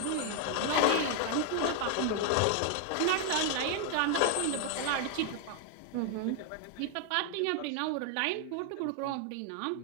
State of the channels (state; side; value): different; both; correlation 0.00